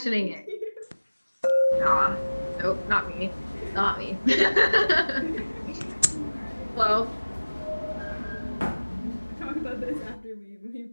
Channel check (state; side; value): inverted; both; correlation -1.00